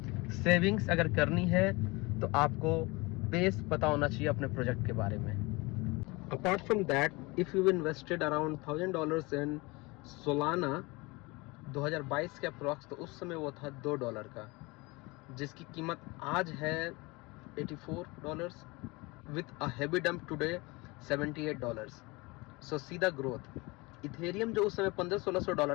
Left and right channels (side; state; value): right; quieter; 24.6 dB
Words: सेविंग्स अगर करनी है तो आपको बेस पता होना चाहिए अपने प्रोजेक्ट के बारे में। Apart from that, if you invested around $1000 in Solana 2022 के अप्रॉक्स, तो उस समय वो था $2 का, जिसकी कीमत आज है $84 with a heavy dump today $78। सो सीधा ग्रोथ। इथेरियम जो उस समय